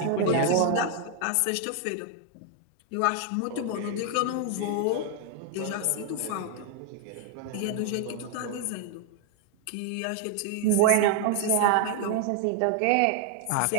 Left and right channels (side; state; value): both; different; correlation 0.00